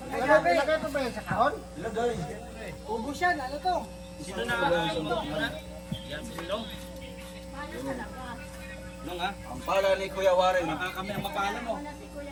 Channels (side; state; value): both; identical; correlation 1.00